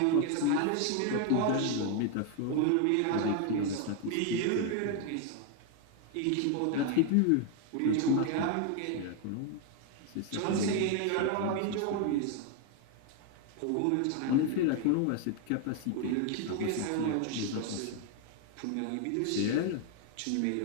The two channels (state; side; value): different; both; correlation 0.01